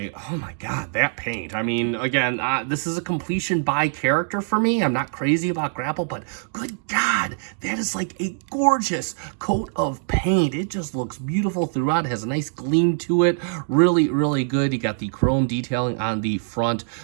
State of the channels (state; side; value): silent; left; digital silence